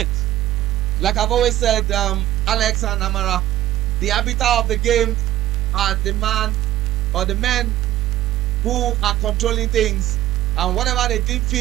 Like I've always said, Alex and Amara, the arbiter of the game are the man or the men who are controlling things, and whatever they deem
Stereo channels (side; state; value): left; quieter; 13.9 dB